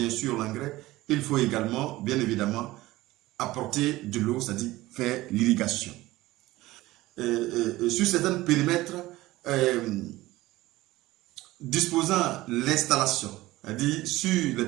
sûr l'engrais, il faut également, bien évidemment, apporter de l'eau, c'est-à-dire faire l'irrigation. Sur certains périmètres, disposant l'installation, c'est-à-dire sur les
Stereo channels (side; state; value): left; quieter; 18.0 dB